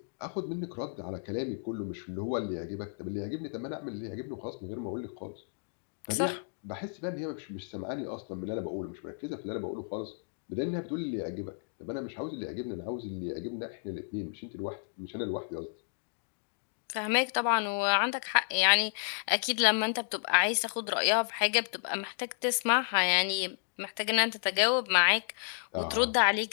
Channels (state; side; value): silent; right; digital silence